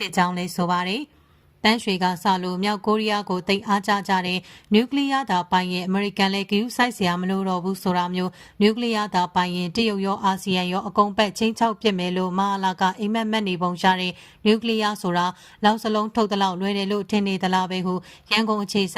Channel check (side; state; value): both; identical; correlation 1.00